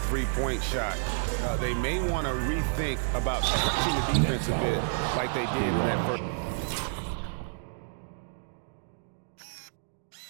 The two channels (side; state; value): left; silent; digital silence